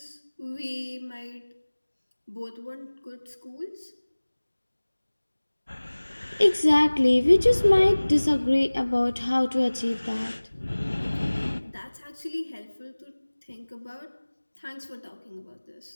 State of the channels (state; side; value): inverted; both; correlation -1.00